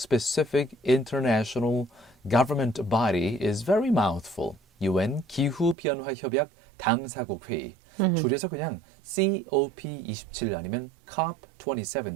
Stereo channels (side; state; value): left; drops out; at 5.8 s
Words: international government body is very mouthful. UN 기후변화 협약 당사국 회의. 줄여서 그냥 COP27 아니면